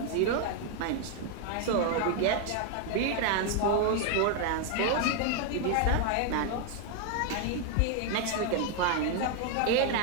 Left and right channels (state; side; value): different; both; correlation 0.00